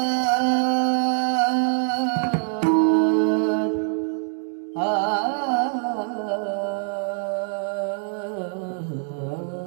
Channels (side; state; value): left; silent; 63 dB below the other